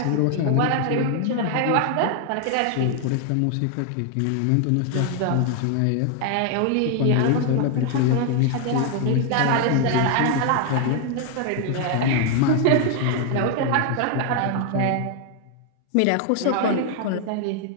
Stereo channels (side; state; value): both; different; correlation 0.00